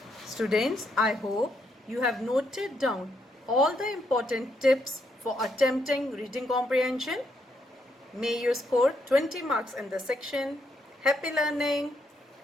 Students, I hope you have noted down all the important tips for attempting reading comprehension. May you score 20 marks in the section. Happy learning.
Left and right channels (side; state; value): both; normal; correlation 0.76